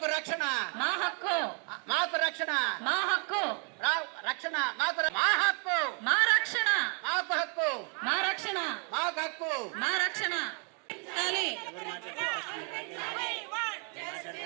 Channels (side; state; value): left; quieter; 38.5 dB